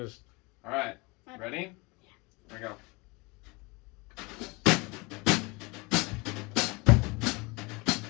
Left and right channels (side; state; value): right; quieter; 26.7 dB